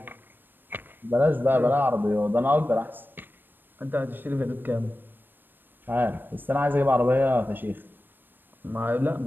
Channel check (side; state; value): left; late; 0.094 ms